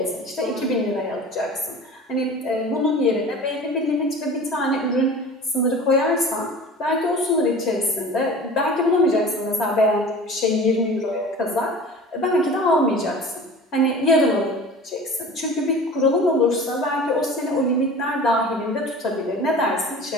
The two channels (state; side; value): normal; both; correlation 0.39